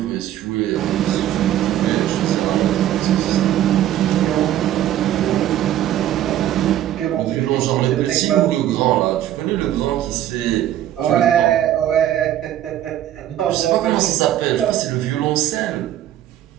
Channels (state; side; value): quieter; left; 12.2 dB